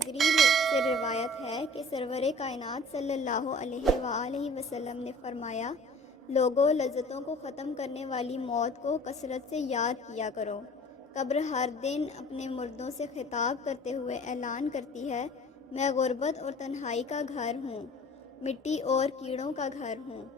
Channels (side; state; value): both; normal; correlation 0.46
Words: سے روایت ہے کہ سرور کائنات صلی اللہ علیہ وآلہ وسلم نے فرمایا، لوگوں، لذتوں کو ختم کرنے والی موت کو کثرت سے یاد کیا کرو۔ قبر ہر دن اپنے مردوں سے خطاب کرتے ہوئے اعلان کرتی ہے، میں غربت اور تنہائی کا گھر ہوں، مٹی اور کیڑوں کا گھر ہوں۔